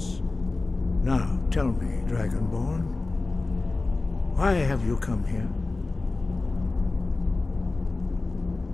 Now, tell me, Dragonborn, why have you come here?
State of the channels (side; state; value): right; quieter; 3.4 dB